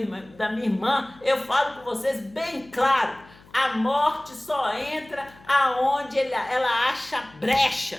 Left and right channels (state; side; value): noise; left; hum, 25 dB below the sound